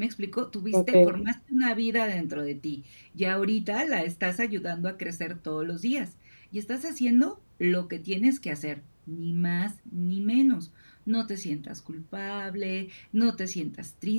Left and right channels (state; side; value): inverted; both; correlation -1.00